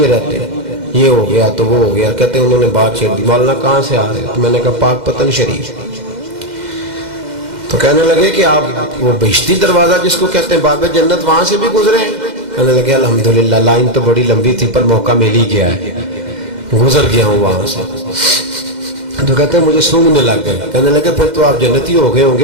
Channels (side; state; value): left; late; 2.1 ms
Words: رہتے ہیں، یہ ہو گیا تو وہ ہو گیا. کہتے ہیں انہوں نے بات چھیڑ دی، مولانا کہاں سے آ رہے؟ تو میں نے کہا پاک پتن شریف. تو کہنے لگے کہ آپ وہ بہشتی دروازہ جس کو کہتے ہیں باب جنت، وہاں سے بھی گزرے ہیں؟ کہنے لگے الحمدللہ، لائن تو بڑی لمبی تھی پر موقع مل ہی گیا ہے، گزر گیا ہوں وہاں سے. تو کہتے ہیں مجھے سونگنے لگ گئے. کہنے لگے پھر تو آپ جنتی ہو گئے ہوں